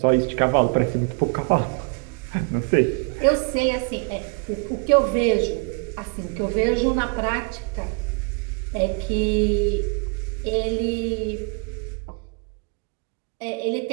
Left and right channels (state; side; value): quieter; left; 36.0 dB